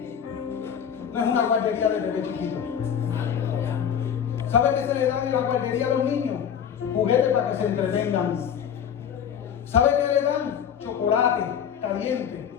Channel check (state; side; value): quieter; right; 8.3 dB